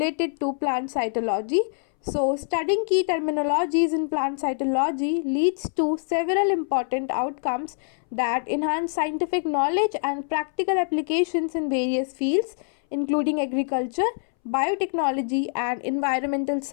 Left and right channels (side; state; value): right; silent; 62 dB below the other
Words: to plant cytology. So studying key terminologies in plant cytology leads to several important outcomes that enhance scientific knowledge and practical applications in various fields, including agriculture, biotechnology and environmental